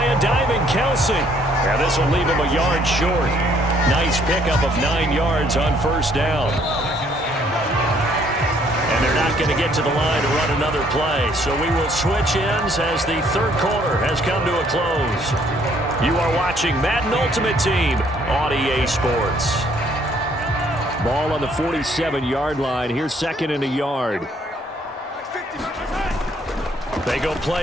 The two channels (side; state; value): both; normal; correlation 0.64